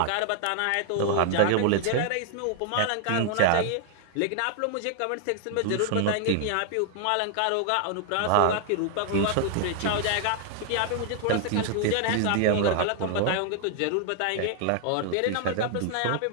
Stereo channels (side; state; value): both; different; correlation 0.00